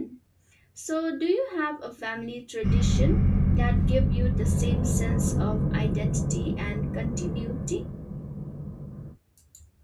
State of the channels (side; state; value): both; identical; correlation 1.00